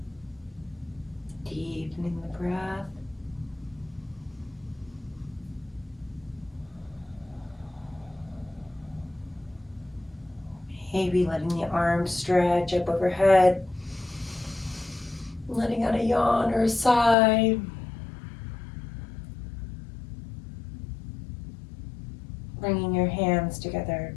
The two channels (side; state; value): right; drops out; at 17.2 s